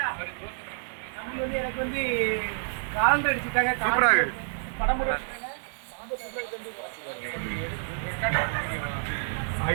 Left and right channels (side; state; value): left; silent; 59 dB below the other